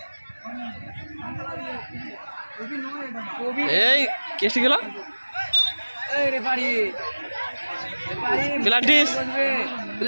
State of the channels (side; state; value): both; inverted; correlation -1.00